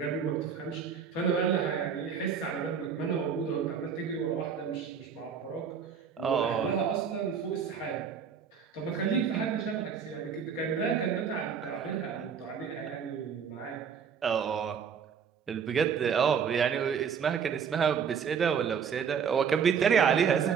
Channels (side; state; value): left; quieter; 6.9 dB